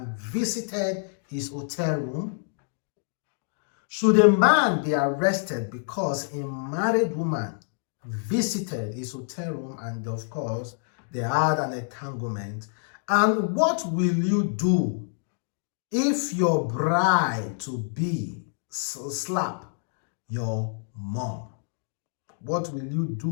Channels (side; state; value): right; silent; digital silence